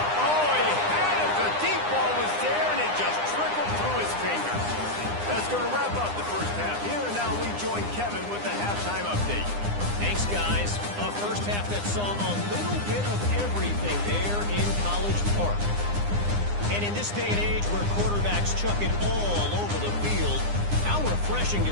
Oh, he had it. The deep ball was there, and it just trickled through his fingers. That's going to wrap up the first half here, and now we join Kevin with the halftime update. Thanks, guys. A first half that saw a little bit of everything there in College Park. And in this day and age where quarterbacks chuck it all over the field, how refreshing to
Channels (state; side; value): late; left; 9.8 ms